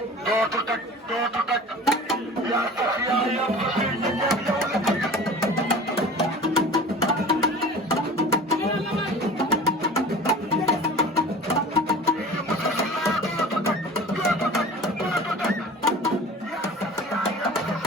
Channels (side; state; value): both; normal; correlation 0.40